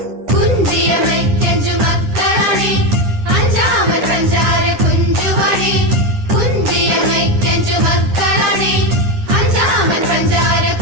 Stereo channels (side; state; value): left; late; 9.9 ms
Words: കുഞ്ചിയമയ്ക്കഞ്ചു മക്കളണേ അഞ്ചാമൻ പഞ്ചാര കുഞ്ചുവണേ കുഞ്ചിയമയ്ക്കഞ്ചു മക്കളണേ അഞ്ചാമൻ പഞ്ചാര